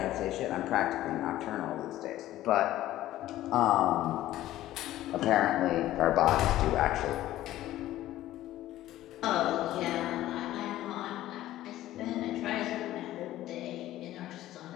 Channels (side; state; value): right; quieter; 14.5 dB